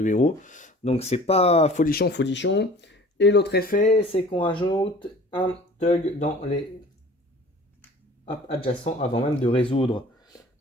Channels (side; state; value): both; normal; correlation 0.47